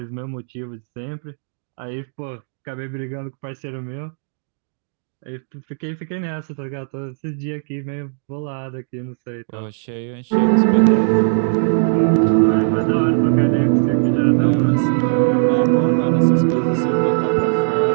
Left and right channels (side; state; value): left; silent; digital silence